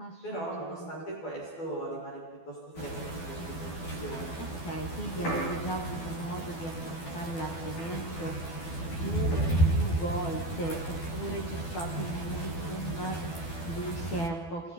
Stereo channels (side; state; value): right; late; 12 ms